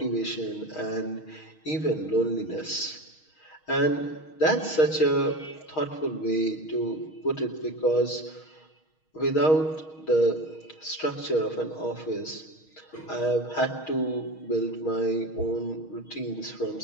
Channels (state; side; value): late; right; 6.4 ms